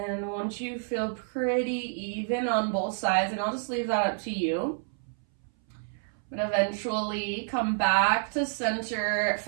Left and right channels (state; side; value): silent; left; 59 dB below the other